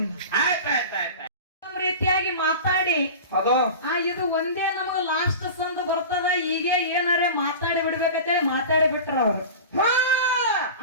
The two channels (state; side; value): inverted; both; correlation -0.33